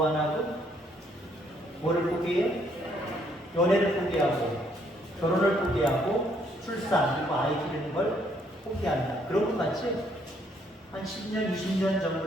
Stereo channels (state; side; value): normal; both; correlation 0.69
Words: 하나고? 뭐를 포기해? 연애를 포기하고, 결혼을 포기하고, 출산, 그리고 아이 기르는 걸 포기한다. 그런 것 같지? 한 10년, 20년